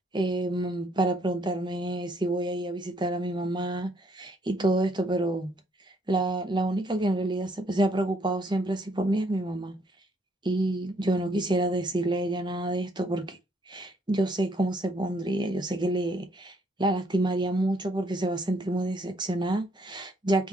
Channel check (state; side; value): normal; both; correlation 0.68